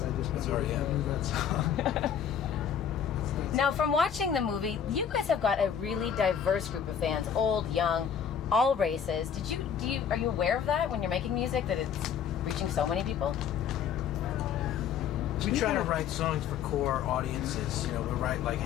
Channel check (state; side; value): quieter; right; 8.1 dB